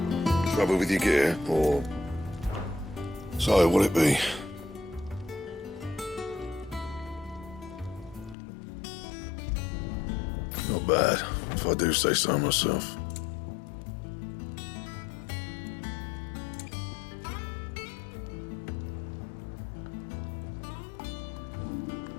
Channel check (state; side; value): drops out; right; at 8.3 s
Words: Trouble with your gear, or... So, will it be? Not bad, if I do say so myself.